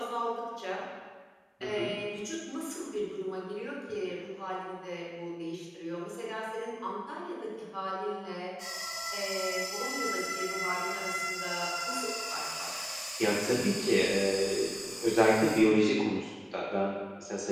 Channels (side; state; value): both; identical; correlation 1.00